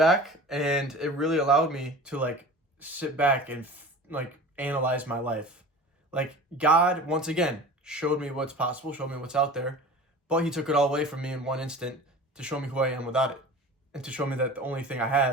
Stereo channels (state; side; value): normal; both; correlation 0.38